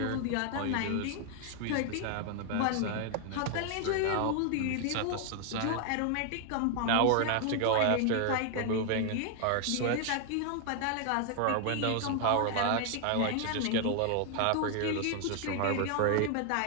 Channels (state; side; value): different; both; correlation 0.00